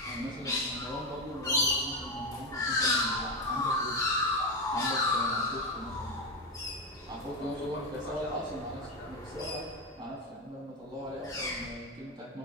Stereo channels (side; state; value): both; normal; correlation 0.13